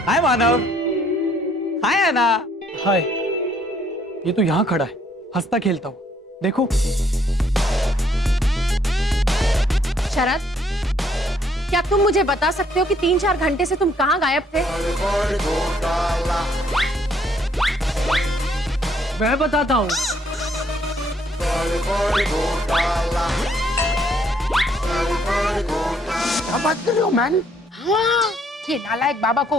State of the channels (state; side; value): normal; both; correlation 0.67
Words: हाय मानव। हाय ऐना। हाय, ये तो यहाँ खड़ा है हंसता खेलता हुआ, देखो। शरद, क्या तुम मुझे बता सकते हो कि 3-4 घंटे से तुम कहाँ गायब थे? मैं बताता हूँ। क्या बात कर रहे हो मैन? हाँ, ये नालायक बाबा को